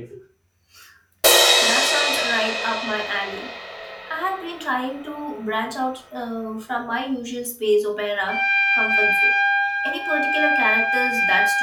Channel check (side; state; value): both; identical; correlation 1.00